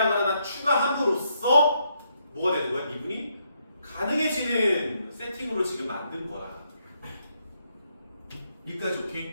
하나 추가함으로써 뭐가 되는 거야? 미분이 가능해지는 세팅으로 지금 만든 거라. 여기까지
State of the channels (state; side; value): inverted; both; correlation -0.76